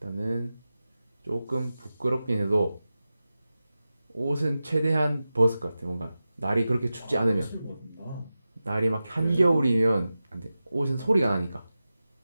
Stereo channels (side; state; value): both; inverted; correlation -0.94